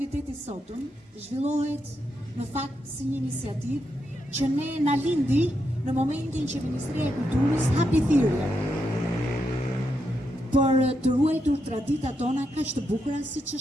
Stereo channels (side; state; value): both; normal; correlation 0.82